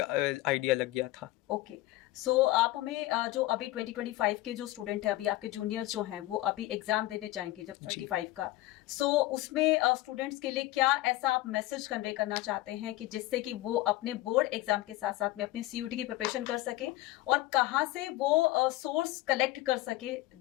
आइडिया लग गया था। ओके। सो आप हमें जो अभी 2025 के जो स्टूडेंट है, अभी आपके जूनियर्स जो हैं वो अभी एग्जाम देने जाएंगे जब जी 25 का, सो उसमें स्टूडेंट्स के लिए क्या ऐसा आप मैसेज कन्वे करना चाहते हैं कि जिससे कि वो अपने बोर्ड एग्जाम के साथ साथ में अपनी सीयूटी की प्रिपरेशन कर सके, और कहाँ से वो सोर्स कलेक्ट कर सके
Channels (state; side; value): quieter; right; 17.2 dB